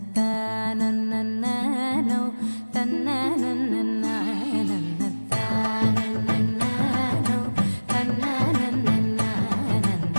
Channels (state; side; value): inverted; both; correlation -1.00